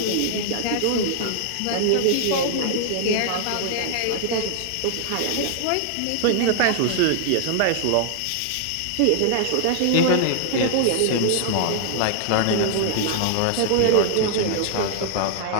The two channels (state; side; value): different; both; correlation 0.00